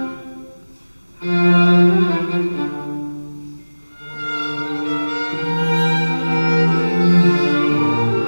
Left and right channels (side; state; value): both; inverted; correlation -1.00